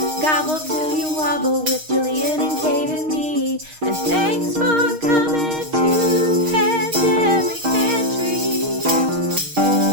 gobble till you wobble with Gillian and Kate and me. And thanks for coming to Pandemic Pantry.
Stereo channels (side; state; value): left; late; 6.4 ms